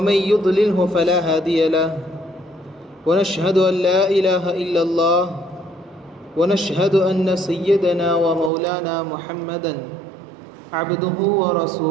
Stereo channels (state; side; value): drops out; left; at 8.5 s